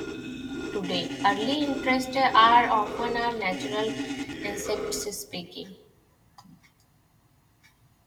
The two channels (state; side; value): identical; both; correlation 1.00